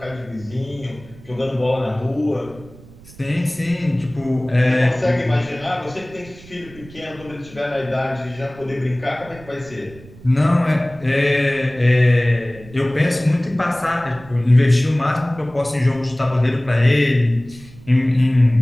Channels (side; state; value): right; noise; rumble, 21 dB below the sound